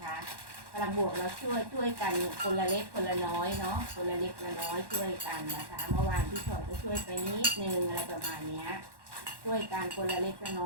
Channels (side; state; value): left; late; 1.1 ms